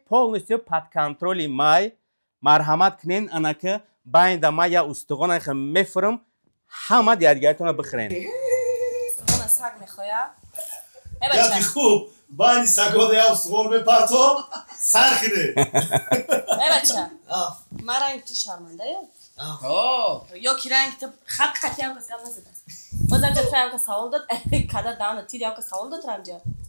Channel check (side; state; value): both; inverted; correlation -1.00